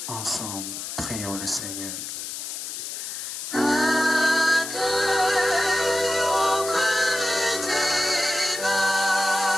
Ensemble, prions le Seigneur.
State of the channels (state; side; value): noise; left; hiss, 7 dB below the sound